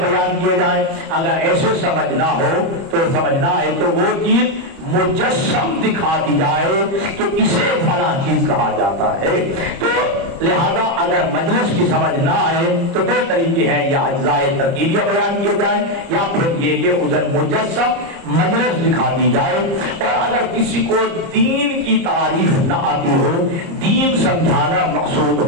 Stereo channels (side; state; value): left; late; 30 ms